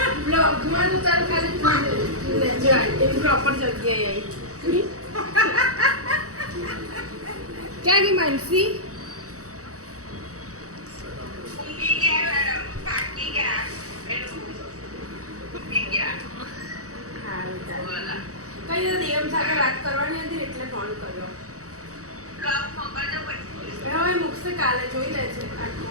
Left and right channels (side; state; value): left; late; 0.66 ms